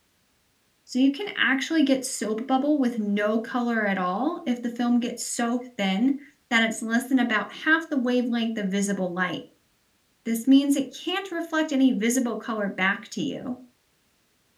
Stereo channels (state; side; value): identical; both; correlation 1.00